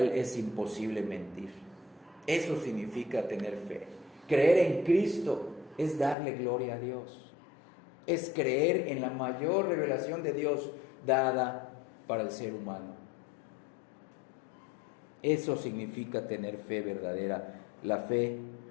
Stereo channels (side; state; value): right; drops out; at 6.2 s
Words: es imposible mentir. Eso significa tener fe. Creer en Cristo es darle gloria a Dios, es creer en la mayor revelación de Dios dada para el ser humano. Eso significa tener fe verdadera, la fe